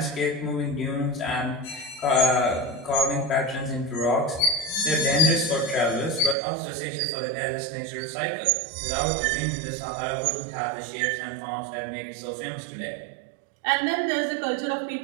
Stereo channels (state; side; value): drops out; left; at 6.4 s